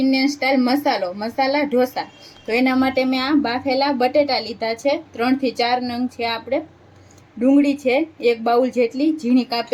स्टाइल मसाला ढोसा। तो एना माटे मैं आ बाफेला बटेटा लीधा छे, 3 થી 4 नंग छे। आपणे डूंगળી छे 1 बाउल जेटली झीणी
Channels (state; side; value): identical; both; correlation 1.00